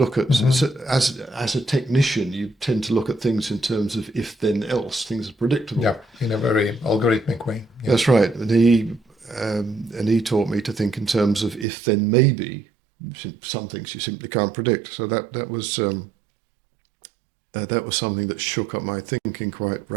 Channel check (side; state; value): left; drops out; at 11.7 s